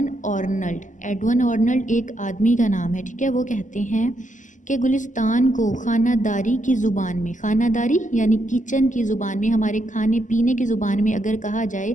आर्नल्ड। एडवन आर्नल्ड एक आदमी का नाम है, ठीक है। वो कहते हैं कि गुलिस्तान को खानादारी की ज़ुबान में, खानादारी यानी किचन की ज़ुबान में, हमारे खाने पीने की ज़ुबान में अगर कहा जाए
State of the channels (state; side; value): late; right; 0.37 ms